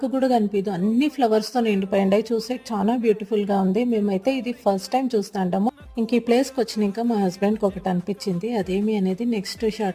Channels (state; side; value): identical; both; correlation 1.00